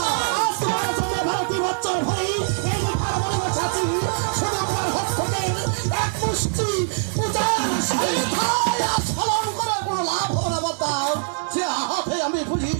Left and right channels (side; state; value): left; silent; digital silence